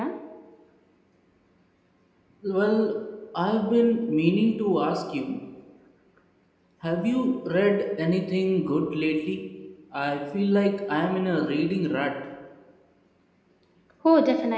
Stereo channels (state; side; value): identical; both; correlation 1.00